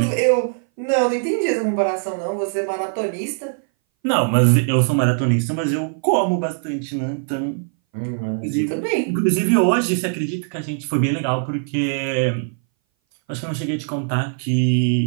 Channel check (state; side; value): silent; left; 60 dB below the other